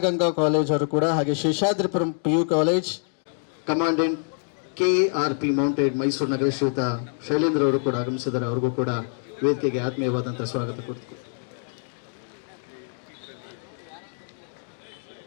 college ಅವರು ಕೂಡ, ಹಾಗೆ Seshadripuram PU college commandant KARP mounted Mysuru ನಗರ ಶ್ರೀಯುತ ಶೈಲೇಂದ್ರ ಅವರು ಕೂಡ ಆಗಮಿಸಿದ್ದಾರೆ. ಅವ್ರಿಗೂ ಕೂಡ ವೇದಿಕೆಗೆ ಆತ್ಮೀಯವಾದಂತಹ ಸ್ವಾಗತ ಕೊಡ್ತೀವಿ.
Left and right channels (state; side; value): silent; right; 61 dB below the other